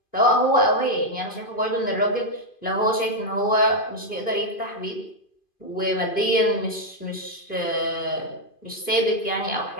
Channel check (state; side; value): late; right; 2.5 ms